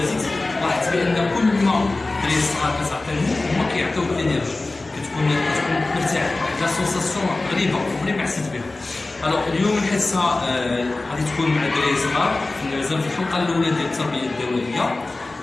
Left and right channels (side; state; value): right; quieter; 3.2 dB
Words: لاحظت بان كل ما الدراري الصغار كتعطيهم هما كيعطيوك الانرجي، كتكون مرتاح، واحد لا سونساسيون غريبه عمري ما حسيت بها. الوغ اليوم الحصه غادي تكون مع الدراري الصغار مازال في الحلقه الاولى ديال التربيه الدوائيه.